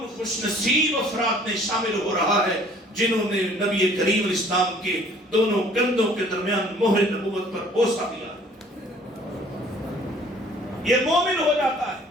خوش نصیب افراد میں شامل ہو رہا ہے جنہوں نے نبی کریم اسلام کے دونوں کندھوں کے درمیان مہر نبوت پر بوسہ دیا۔ یہ مومن ہو جاتا ہے،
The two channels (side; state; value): both; normal; correlation 0.55